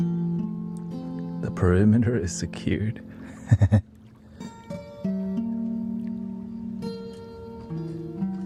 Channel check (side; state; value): both; identical; correlation 1.00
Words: perimeter is secured. There